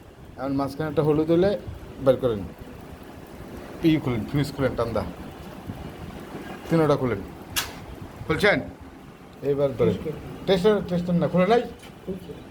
এখন মাঝখানেরটা হলুদ হলে বের করেন খুলেন ফিউজ খুলেন টান্দা তিনোটা খুলছেন এইবার ধরেন টেস্টার না খুলে নাই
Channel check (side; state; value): both; identical; correlation 1.00